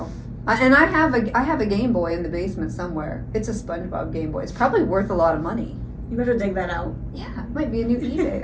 And I have a Game Boy in the basement somewhere. It's a SpongeBob Game Boy. It's probably worth a lot of money. You better dig that out. Yeah, it might be a new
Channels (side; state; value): both; identical; correlation 1.00